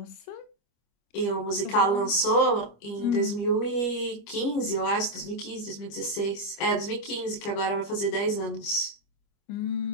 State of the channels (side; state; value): right; late; 25 ms